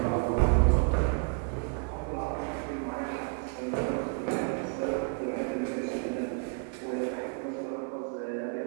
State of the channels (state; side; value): quieter; left; 39.9 dB